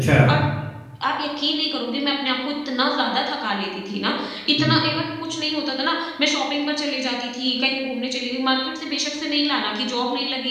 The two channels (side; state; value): both; identical; correlation 1.00